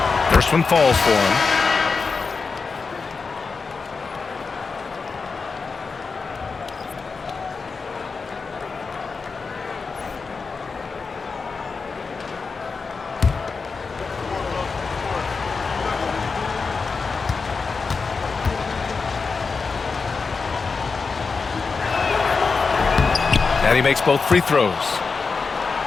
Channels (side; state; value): right; quieter; 4.7 dB